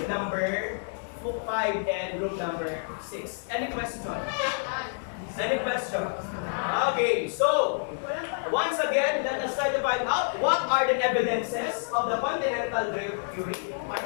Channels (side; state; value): right; silent; digital silence